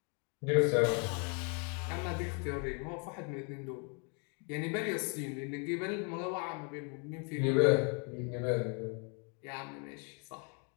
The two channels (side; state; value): right; quieter; 37.5 dB